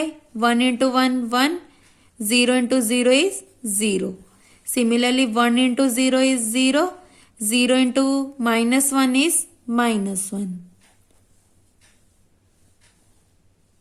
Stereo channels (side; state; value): both; identical; correlation 1.00